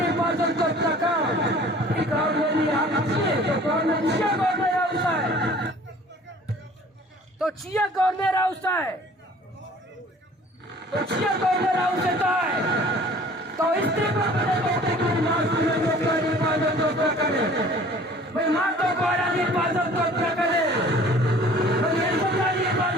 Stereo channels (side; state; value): both; normal; correlation 0.50